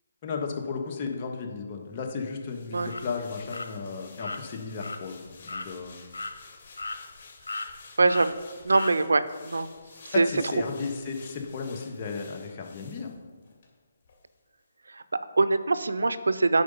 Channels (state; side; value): inverted; both; correlation -0.89